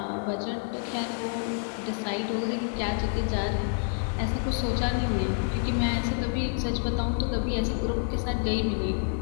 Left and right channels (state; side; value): silent; right; 59 dB below the other